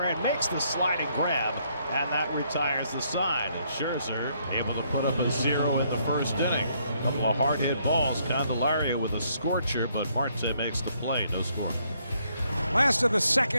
makes the sliding grab, and that retires the side. And Scherzer able to put up a 0 in the first inning. A couple of hard hit balls. Candelario with a scorcher, but Marte makes the play. No score. Last of the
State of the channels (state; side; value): inverted; both; correlation -0.70